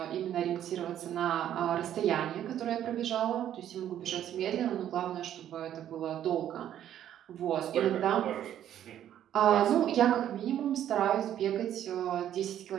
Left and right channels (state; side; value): quieter; left; 10.9 dB